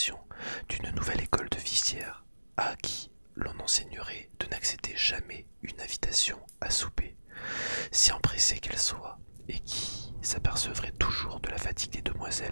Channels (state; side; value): inverted; both; correlation -1.00